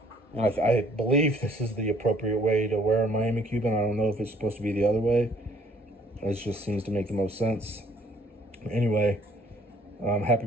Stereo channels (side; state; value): both; normal; correlation 0.61